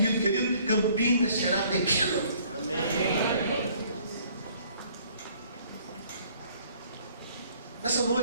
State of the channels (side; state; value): both; inverted; correlation -0.59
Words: querido, Campinas será pequeno. Amém. Nessa